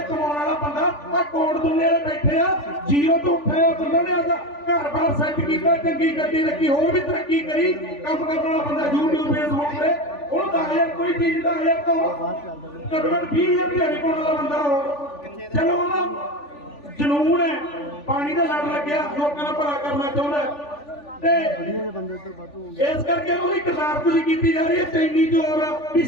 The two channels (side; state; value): right; late; 3.4 ms